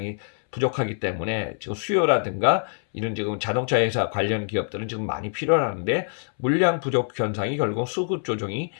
부족하기 때문에 지금 수요라든가 이런 지금 자동차 회사 관련 기업들은 지금 많이 필요하는데 물량 부족 현상이 결국 수급 조정이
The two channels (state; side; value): silent; right; 61 dB below the other